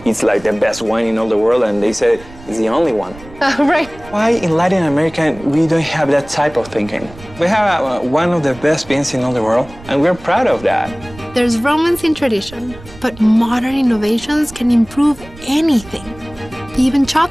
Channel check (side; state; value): right; noise; rumble, 19 dB below the sound